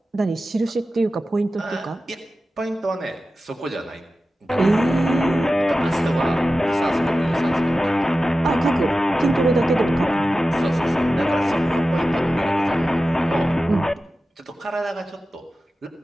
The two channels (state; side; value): normal; both; correlation 0.94